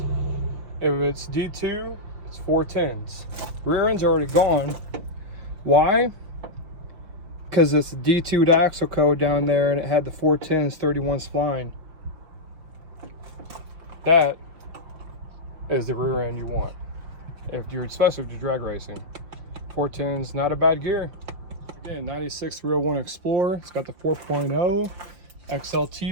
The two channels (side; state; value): left; late; 5.7 ms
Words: If it's D2, it's 410s. Rear end's already gone. Why? Because it's D2 axle code down there and it had the 410s 31 spline. That is the rear end you want. If you're, especially if you're drag racing. 410s, not a bad gear. Again, 96 through 01 Explorer. It's got the 4.0